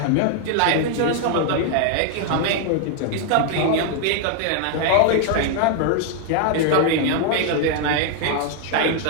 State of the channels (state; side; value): different; both; correlation 0.00